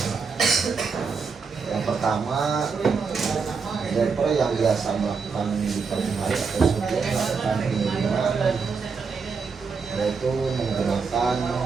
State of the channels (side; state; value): left; quieter; 5.2 dB